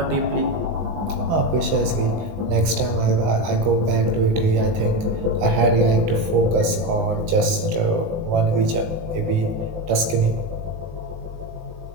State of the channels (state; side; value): late; left; 20 ms